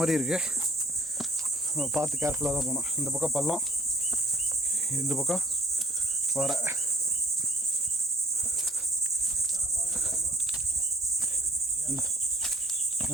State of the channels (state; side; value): normal; both; correlation 0.57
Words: இருக்கு, பார்த்து கேர்ஃபுல்லாக தான் போகணும். இந்த பக்கம் பள்ளம், இந்த பக்கம் வர.